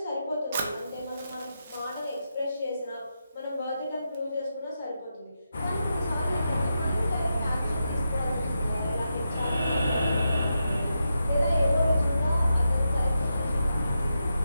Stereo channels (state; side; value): inverted; both; correlation -0.86